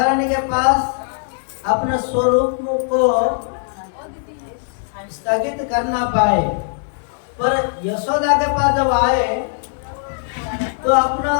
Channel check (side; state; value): right; silent; digital silence